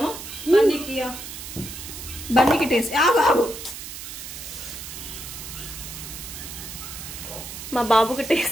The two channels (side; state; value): right; noise; hiss, 10 dB below the sound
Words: బన్నీకి టేస్ట్. ఆగు. మా బాబుకి